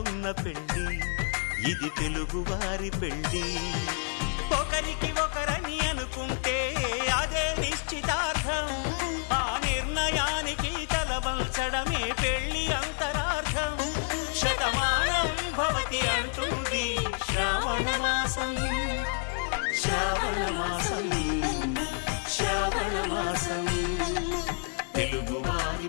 పెళ్ళి ఇది తెలుగువారి పెళ్ళి ఒకరికి ఒకరని అనుకుంటే అదే నిశ్చితార్థం ఆ నిర్ణయానికి తలవంచడమే పెళ్లి అంతరార్థం శతమానం భవతి అంటుంది శ్రావణ మాసం శ్రావణ మాసం శ్రావణ మాసం తెలుగువారి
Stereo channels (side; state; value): right; silent; 55 dB below the other